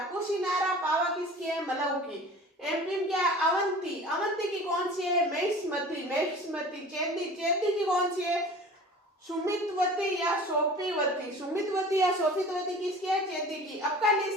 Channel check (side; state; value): both; normal; correlation 0.41